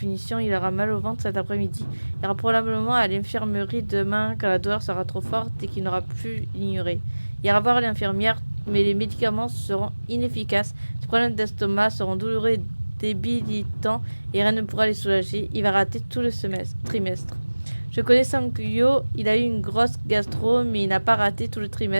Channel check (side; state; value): both; inverted; correlation -1.00